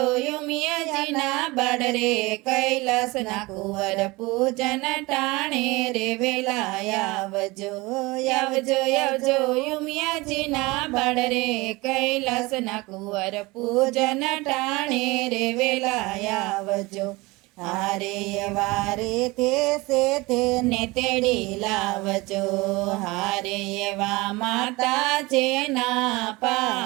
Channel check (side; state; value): left; quieter; 22.9 dB